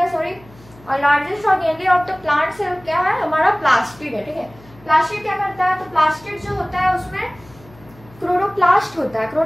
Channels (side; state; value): left; noise; hum, 24 dB below the sound